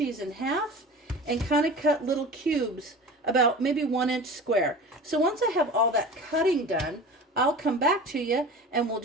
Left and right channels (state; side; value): normal; both; correlation 0.36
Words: in half and kind of cut little cubes about maybe 1 inch square. So once I have all that cutting done, I'll come back to you and we'll